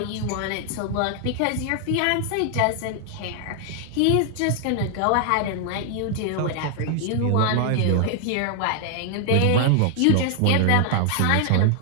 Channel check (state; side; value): different; both; correlation 0.00